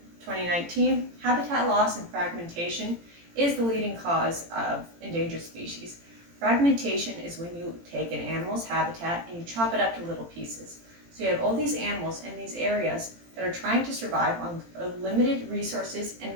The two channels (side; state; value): left; late; 18 ms